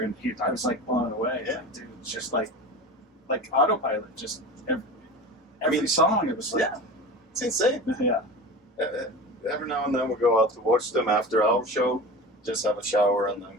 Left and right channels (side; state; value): both; normal; correlation 0.32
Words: and I was like blown away. Yeah. Like, dude, it's just like autopilot. Just every song. It was like, it's insane. yeah. Every now and then we go out to watch them after our show, just have a shower, and then